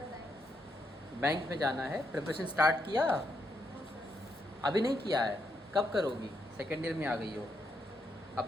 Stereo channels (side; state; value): both; normal; correlation 0.79